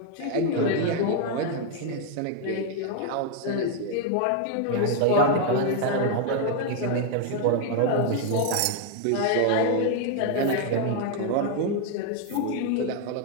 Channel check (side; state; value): both; different; correlation 0.00